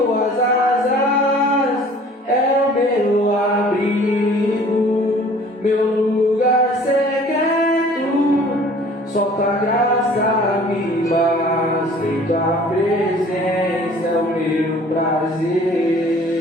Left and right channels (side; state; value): both; normal; correlation 0.50